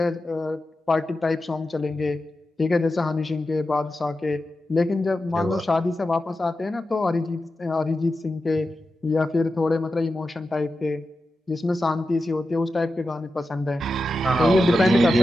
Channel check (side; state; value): both; normal; correlation 0.91